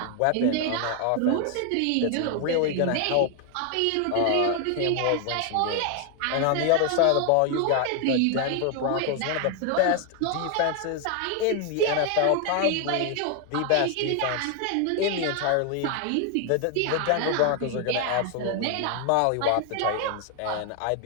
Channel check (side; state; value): both; different; correlation 0.00